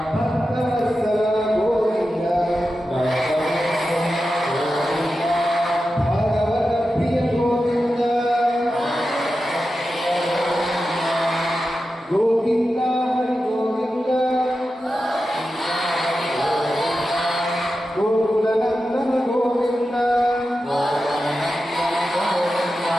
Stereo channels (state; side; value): normal; both; correlation 0.91